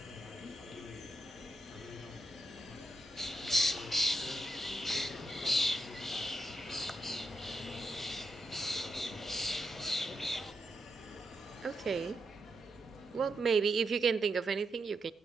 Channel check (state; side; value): normal; both; correlation 0.84